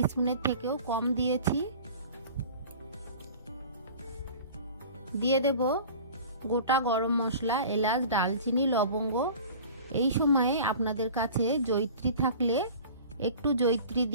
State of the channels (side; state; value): both; inverted; correlation -0.42